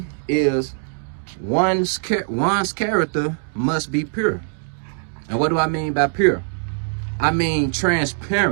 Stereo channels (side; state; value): left; silent; digital silence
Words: is one's character must be pure. And what do I mean by pure? I mean